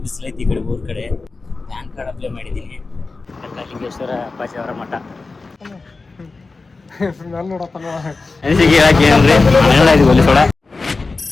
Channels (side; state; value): right; quieter; 3.9 dB